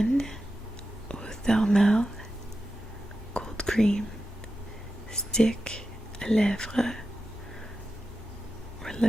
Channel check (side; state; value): both; normal; correlation 0.91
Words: Ophthalmal Cold Cream Stick à Lèvres or